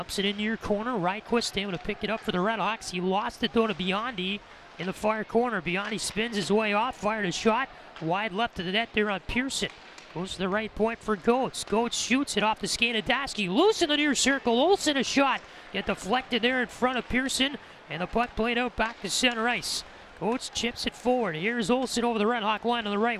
it into your corner. Ryquist able to pick it up for the RedHawks. He lost it though to Biondi in the far corner. Biondi spins his way off. Fired a shot. Wide left of the net there on Pearson. Goes to the right point for Goetz. Goetz shoots it off the skate of Dasky. Loose in the near circle. Olsen a shot. Get deflected there in front of Pearson. And the puck played out back to center ice. Goetz chips it forward. Here's Olsen over the RedHawk line on the right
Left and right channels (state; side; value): identical; both; correlation 1.00